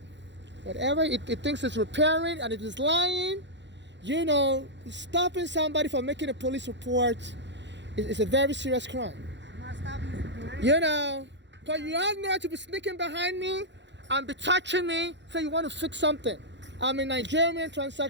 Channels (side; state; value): left; late; 0.52 ms